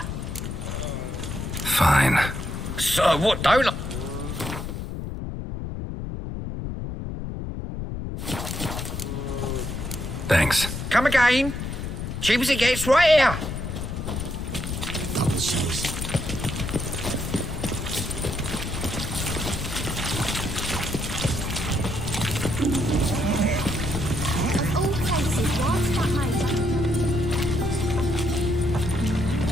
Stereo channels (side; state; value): left; noise; rumble, 5 dB below the sound